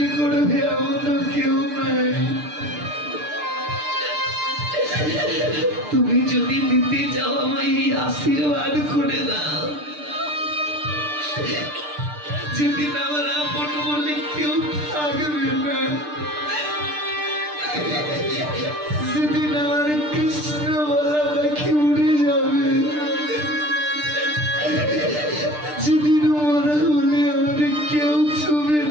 করবে এমন কেউ নাই। তুমি যদি দিতে চাও আমায় এই আশীর্বাদ করে দাও, যেদিন আমার আপন বলে কেউ থাকবে না, সেদিন আমার কৃষ্ণ বলা পাখি উড়ে যাবে, যেদিন মরা হলে আমার কেউ ছুবে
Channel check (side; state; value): left; late; 6.7 ms